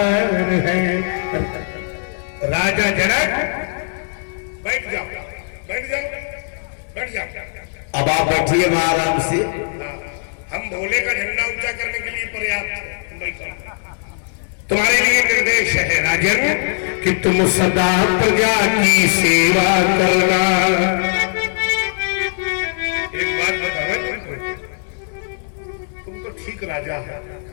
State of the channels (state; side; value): silent; right; digital silence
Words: है। राजा जनक बैठ जाओ बैठ जाओ बैठ जाओ। अब आप बैठिए वहां आराम से। हम भोले का झंडा ऊंचा करने के लिए पर्याप्त है, बैठो। तुम्हारे लिए निर्देश है राजन कि तुम सदा प्रजा की सेवा करना। एक बात बताओ तुम तो ठीक राजा है,